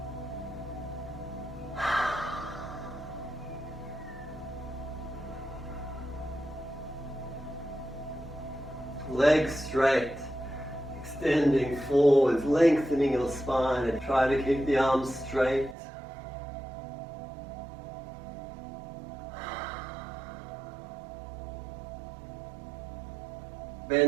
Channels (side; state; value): left; drops out; at 15.8 s